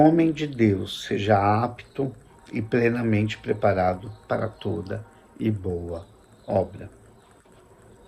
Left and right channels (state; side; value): identical; both; correlation 1.00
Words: de Deus seja apto e plenamente preparado para toda e boa obra.